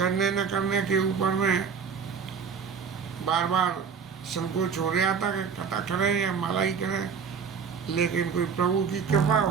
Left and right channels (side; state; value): left; quieter; 6.3 dB